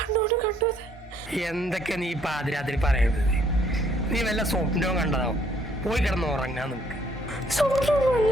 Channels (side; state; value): both; normal; correlation 0.65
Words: കണ്ടത്. എന്തൊക്കെ നീ പാതിരാത്രി പറയുന്നത്? നീ വല്ല സ്വപ്നവും കണ്ടതാവും. പോയി കിടന്ന് ഉറങ്ങാൻ നമുക്ക്.